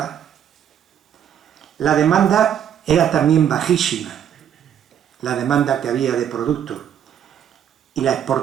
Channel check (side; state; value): left; quieter; 9.4 dB